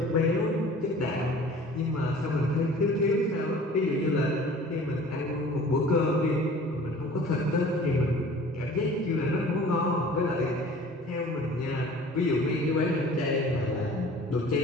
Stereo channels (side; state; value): both; normal; correlation 0.46